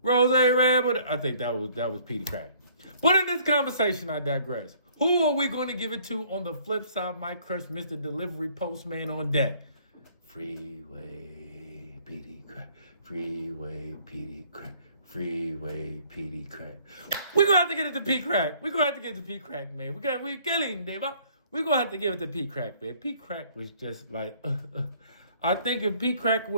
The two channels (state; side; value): inverted; both; correlation -0.59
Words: Rose Red, but I think that was Peedi Crakk. But in this conversation, I digress. Who are we going to give it to on the flip side? My crush, Mr. Delivery Postman on deck. Freeway, Peedi Crakk. Freeway, Peedi Crakk. Freeway, Peedi Crakk. We're going to have to get it to Crakk. We're going to have to get it to Crakk, man. We're killing, Dave. We're going to have to give it to Crakk, man. Crakk was just like, I think if Crakk